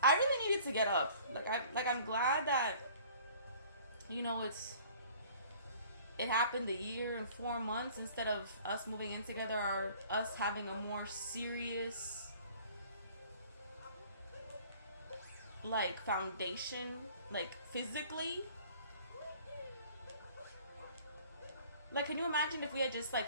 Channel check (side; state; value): both; inverted; correlation -0.51